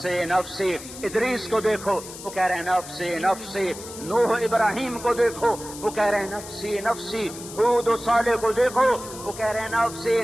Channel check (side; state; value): left; noise; hiss, 13 dB below the sound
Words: نفسی. ادریس کو دیکھو, وہ کہہ رہے ہیں نفسی نفسی. نوح ابراہیم کو دیکھو, وہ کہہ رہے ہیں نفسی نفسی. ہود و صالح کو دیکھو, وہ کہہ رہے ہیں نفسی